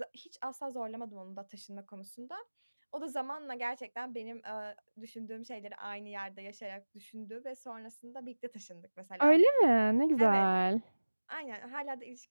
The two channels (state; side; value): inverted; both; correlation -1.00